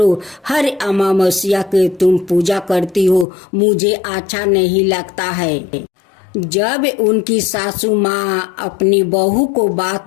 हर अमावस्या के तुम पूजा करती हो, मुझे अच्छा नहीं लगता है। जब उनकी सासू माँ अपनी बहू को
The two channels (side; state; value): right; drops out; at 3.2 s